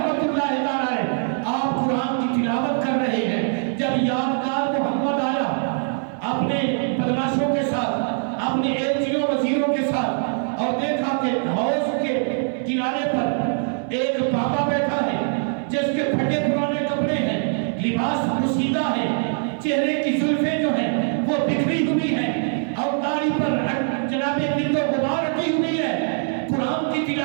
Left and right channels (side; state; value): left; silent; 64 dB below the other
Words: اللہ تعالی، آپ قرآن کی تلاوت کر رہے ہیں، جب یادگار محمد آیا اپنے بدماشوں کے ساتھ، اپنے ایلچیوں وزیروں کے ساتھ، اور دیکھا کہ حوض کے کنارے پر ایک بابا بیٹھا ہے جس کے پھٹے پرانے کپڑے ہیں، لباس پوشیدہ ہے، چہرے کی زلفیں جو ہیں وہ بکھری ہوئی ہیں اور داڑھی پر جناب گرد و غبار رکھی ہوئی ہے، قرآن کی